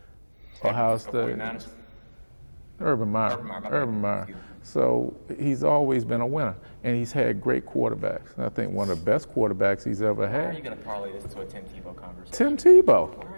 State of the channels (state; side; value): inverted; both; correlation -1.00